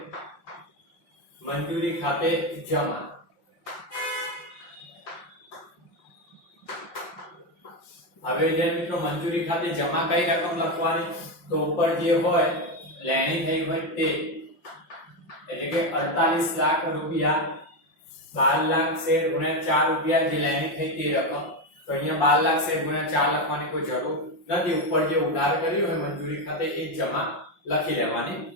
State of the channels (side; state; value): right; late; 5.7 ms